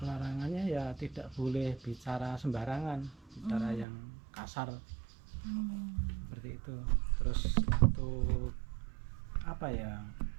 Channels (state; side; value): drops out; left; at 3.9 s